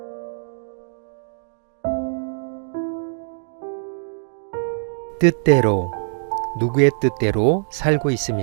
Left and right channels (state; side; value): silent; left; digital silence